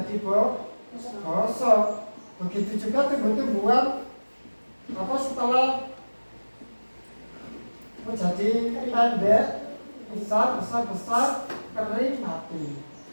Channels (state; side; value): inverted; both; correlation -1.00